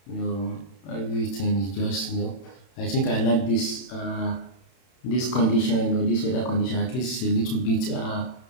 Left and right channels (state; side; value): late; right; 31 ms